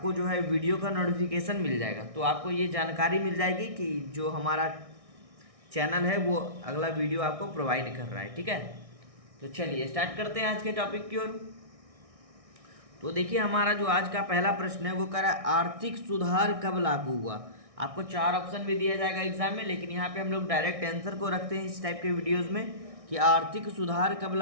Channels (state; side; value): late; left; 1.6 ms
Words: जो है वीडियो का नोटिफिकेशन मिल जाएगा। तो आपको ये जानकारी मिल जाएगी कि जो हमारा चैनल है वो अगला वीडियो आपको प्रोवाइड कर रहा है। ठीक है, तो चलिए स्टार्ट करते हैं आज के टॉपिक की ओर। तो देखिए, हमारा जो आज का पहला प्रश्न है वो कह रहा है आर्थिक सुधार कब लागू हुआ। आपको 4 ऑप्शन भी दिया जाएगा एग्जाम में, लेकिन यहाँ पे हम लोग डायरेक्ट आंसर को रखते हैं इस टाइप के वीडियोस में कि आर्थिक सुधार कब